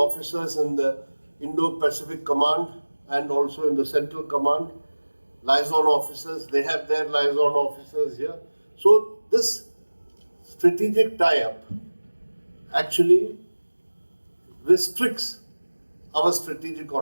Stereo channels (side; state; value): both; inverted; correlation -1.00